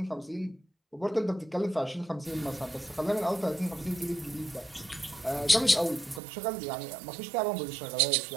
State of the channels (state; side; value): drops out; left; at 6.2 s